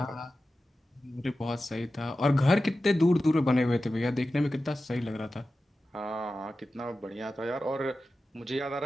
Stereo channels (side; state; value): both; normal; correlation 0.93